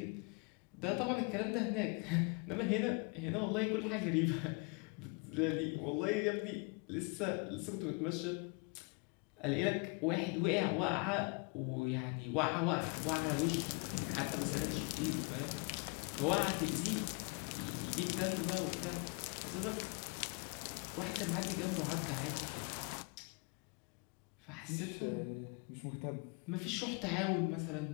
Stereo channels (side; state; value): right; quieter; 31.4 dB